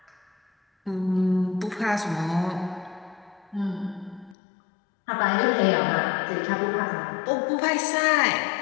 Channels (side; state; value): right; drops out; at 4.4 s